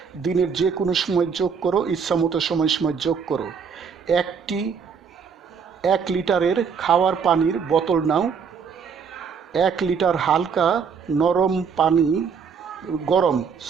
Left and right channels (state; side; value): quieter; left; 6.3 dB